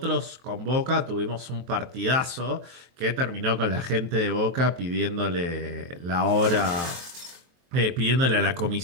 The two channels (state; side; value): late; left; 23 ms